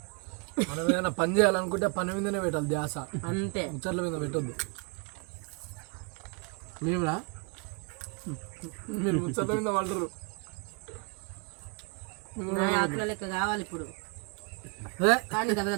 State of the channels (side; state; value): left; quieter; 33.5 dB